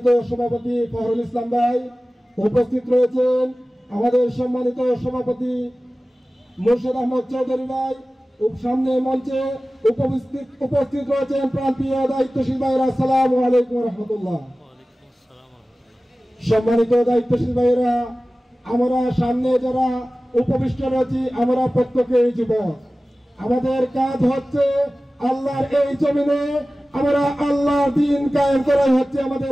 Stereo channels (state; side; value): normal; both; correlation 0.96